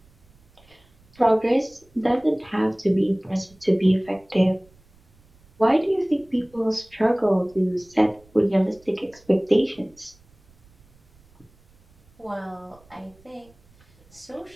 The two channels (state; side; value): noise; right; rumble, 30 dB below the sound